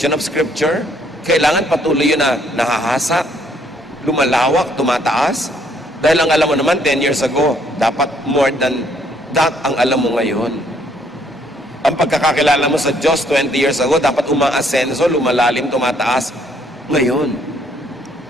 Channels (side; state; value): both; normal; correlation 0.67